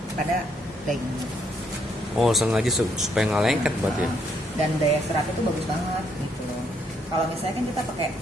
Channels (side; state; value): both; normal; correlation 0.72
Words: pada dagingnya. Oh, sengaja supaya nggak lengket berarti ya? Dan daya seratnya itu bagus banget gitu loh. Kalau misalnya kan kita pakai